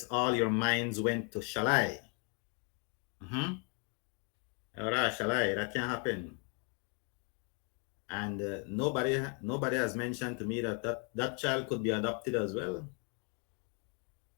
all your minds went to shall I? All right, shall I? That can happen. And nobody has mentioned to me that child could be adopted as well.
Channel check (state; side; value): quieter; right; 34.2 dB